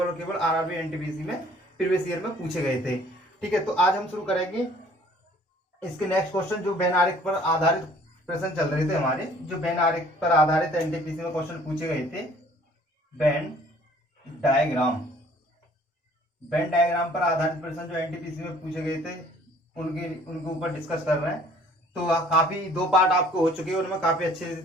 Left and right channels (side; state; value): both; normal; correlation 0.55